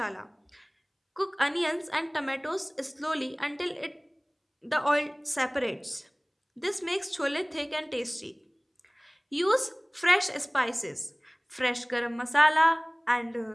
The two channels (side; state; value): both; identical; correlation 1.00